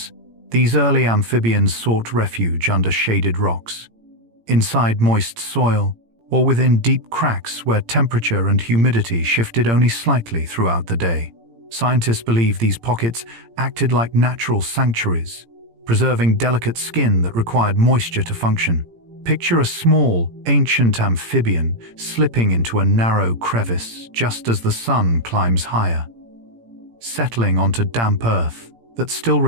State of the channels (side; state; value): left; late; 17 ms